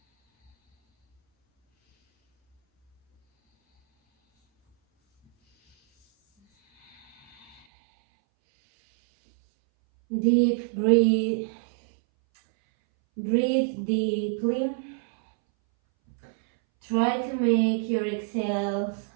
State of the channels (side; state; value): left; drops out; at 7.6 s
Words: Deep breathe. Breathe deeply. Try to make your exhales